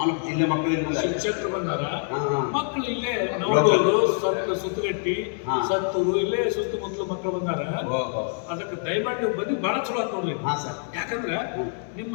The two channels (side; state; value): right; silent; 55 dB below the other